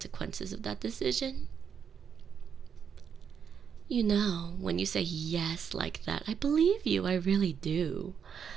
of that decision? You know, when you say yes like that, I believe you, I really do.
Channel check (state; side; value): quieter; left; 7.3 dB